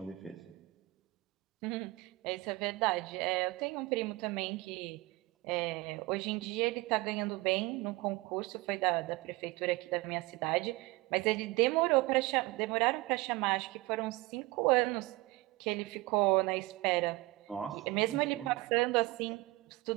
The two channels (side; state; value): left; quieter; 21.1 dB